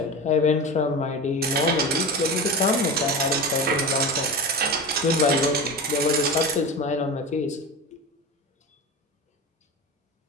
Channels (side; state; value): both; normal; correlation 0.26